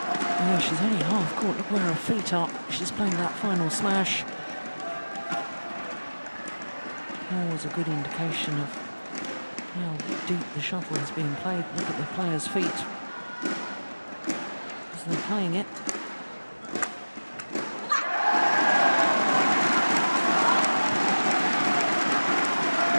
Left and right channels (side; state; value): both; inverted; correlation -1.00